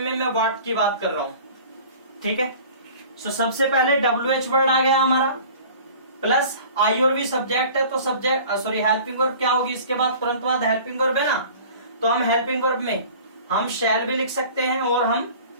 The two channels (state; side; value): inverted; both; correlation -0.44